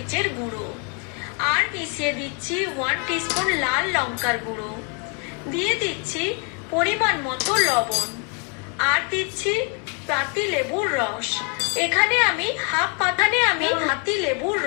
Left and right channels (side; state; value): right; quieter; 37.4 dB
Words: গুঁড়ো, আর মিশিয়ে দিচ্ছি 1 টিস্পুন লাল লঙ্কার গুঁড়ো, দিয়ে দিচ্ছি পরিমাণ মতো লবণ, আর দিচ্ছি পাতি লেবুর রস। এখানে আমি হাফ